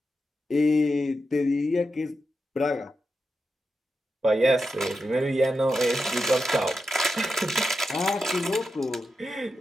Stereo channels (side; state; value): both; normal; correlation 0.88